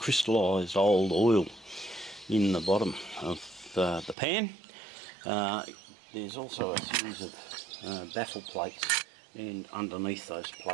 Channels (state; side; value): drops out; left; at 4.2 s